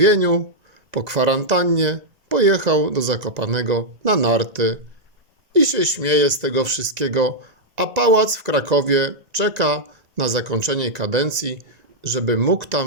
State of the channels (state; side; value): late; left; 1.9 ms